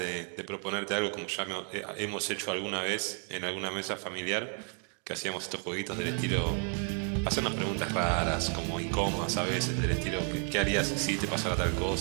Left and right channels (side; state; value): left; quieter; 39.5 dB